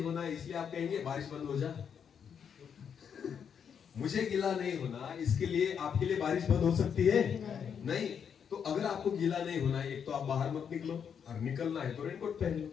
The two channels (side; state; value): right; quieter; 7.5 dB